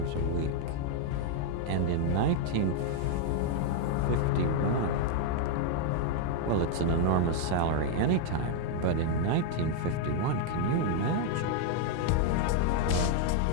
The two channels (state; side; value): different; both; correlation 0.00